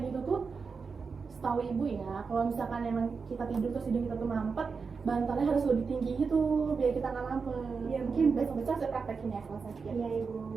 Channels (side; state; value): left; quieter; 5.1 dB